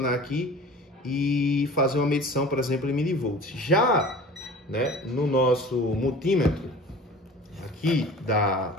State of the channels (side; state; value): both; normal; correlation 0.41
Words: aqui e fazer uma medição, por exemplo, em milivolts. Já, né, no nosso multímetro aqui